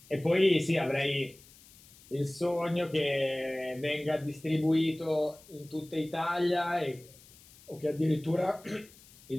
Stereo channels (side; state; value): left; noise; hiss, 24 dB below the sound